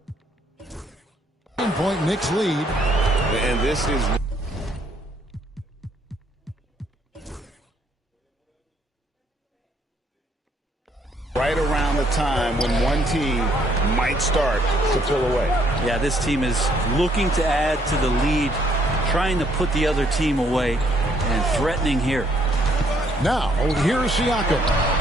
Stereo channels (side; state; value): both; normal; correlation 0.68